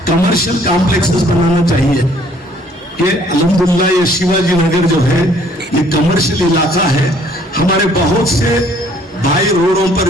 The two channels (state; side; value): normal; both; correlation 0.60